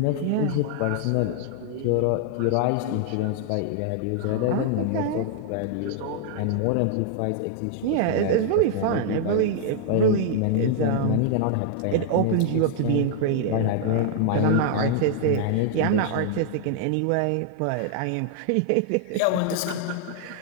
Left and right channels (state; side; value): different; both; correlation 0.00